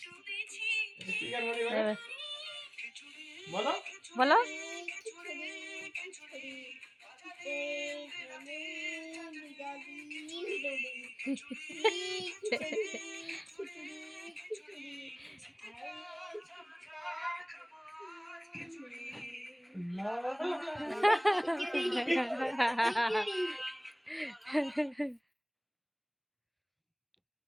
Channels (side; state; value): both; identical; correlation 1.00